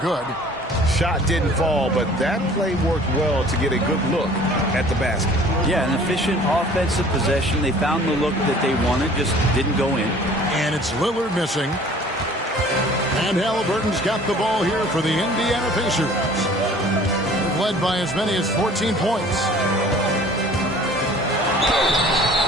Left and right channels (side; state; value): both; normal; correlation 0.50